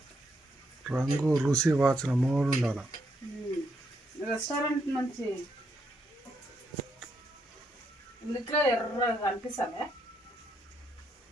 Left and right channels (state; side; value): normal; both; correlation 0.77